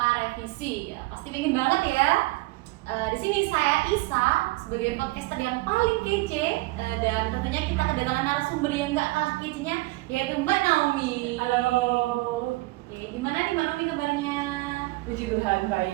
revisi. Ya, pasti pengen banget ya. Di sini saya Isa sebagai podcaster yang paling kece, dan tentunya kita kedatangan narasumber yang gak kalah kecenya, yaitu Mbak Naomi. Halo. Oke, gimana nih Mbak Naomi kabarnya? Puji Tuhan,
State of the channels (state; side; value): quieter; left; 21.4 dB